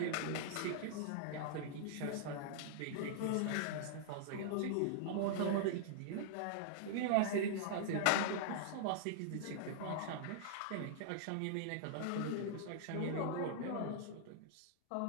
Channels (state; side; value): different; both; correlation -0.01